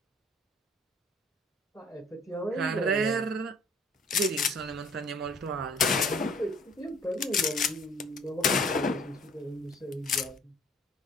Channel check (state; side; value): normal; both; correlation 0.55